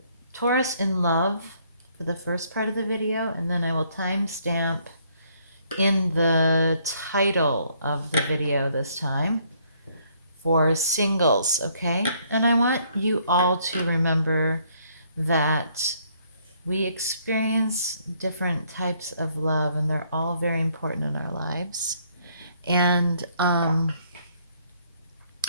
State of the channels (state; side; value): inverted; both; correlation -0.67